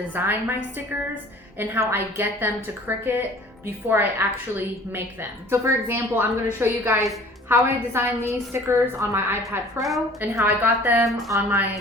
my stickers and how I get them to Cricut before I actually make them. So for example, I'm going to show you guys how I designed these stickers on my iPad Pro and how I got them on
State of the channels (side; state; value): both; normal; correlation 0.48